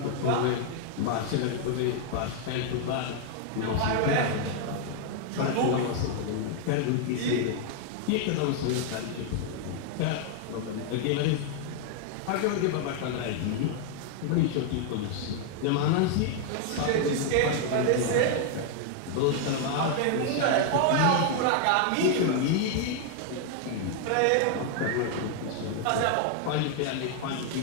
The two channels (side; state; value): both; different; correlation 0.00